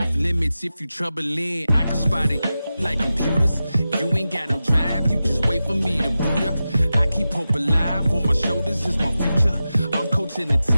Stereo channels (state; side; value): inverted; both; correlation -0.93